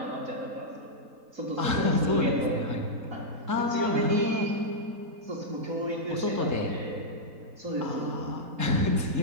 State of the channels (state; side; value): late; left; 3.8 ms